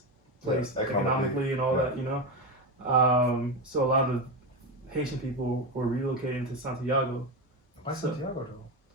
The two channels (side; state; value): both; normal; correlation 0.16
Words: place economically and all that, so a lot of Haitian people were relocating to Santiago, Why So, Santiago though?